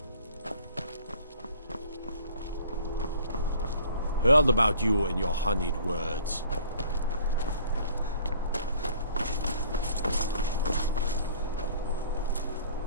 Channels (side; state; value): both; inverted; correlation -0.52